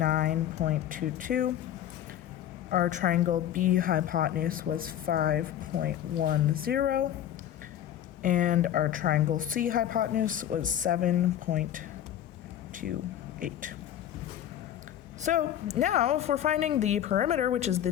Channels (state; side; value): quieter; right; 11.1 dB